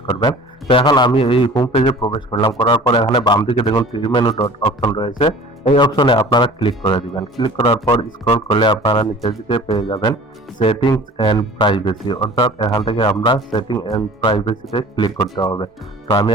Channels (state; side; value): normal; both; correlation 0.44